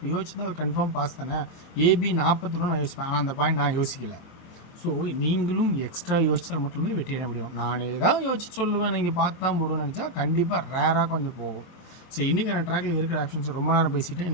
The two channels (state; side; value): late; right; 23 ms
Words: யோசிச்சுன்னா அது கன்ஃபார்ம் பாஸ் தானே. ஏபி 41 நான் யோசிப்பேன், ஆனால் அந்த பாயிண்ட் நான் யோசிக்கலை. ஸோ நீங்களும் எக்ஸ்ட்ரா யோசித்தால் மட்டுமே வெற்றி அடைய முடியும். நான் ஏதாவது யோசிச்சு சொல்லுவேன், நீங்கள் பார்த்து தான் போடுவேன்னு நினச்சா கண்டிப்பாக ரேராக கொஞ்சம் போகும். ஸோ இன்றைக்கான ட்ராக்கில் இருக்கிற ஆப்ஷன்ஸ் ரொம்ப நேரம் பேசிவிட்டு